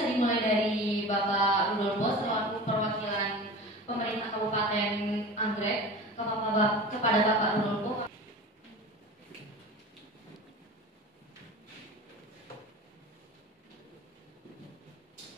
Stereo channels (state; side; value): normal; both; correlation 0.34